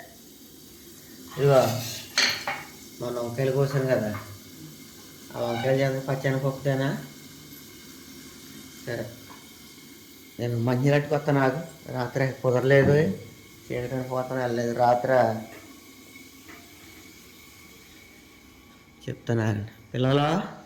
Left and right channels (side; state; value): both; identical; correlation 1.00